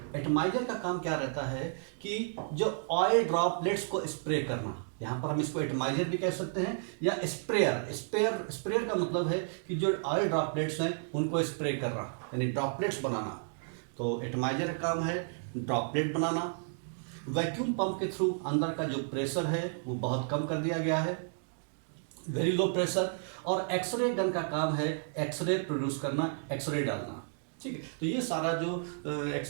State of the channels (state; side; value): silent; left; digital silence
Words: एटमाइजर का काम क्या रहता है कि जो ऑयल ड्रॉपलेट्स को स्प्रे करना, यहाँ पर हम इसको एटमाइजर भी कह सकते हैं या स्प्रेयर का मतलब है कि जो ऑयल ड्रॉपलेट्स हैं उनको स्प्रे करना, यानी ड्रॉपलेट्स बनाना। तो एटमाइजर का काम है ड्रॉपलेट बनाना। वैक्यूम पंप के थ्रू अंदर का जो प्रेशर है वो बहुत कम कर दिया गया है, वेरी लो प्रेशर। और एक्सरे गन का काम है एक्सरे प्रोड्यूस करना, एक्सरे डालना, ठीक है। तो ये सारा जो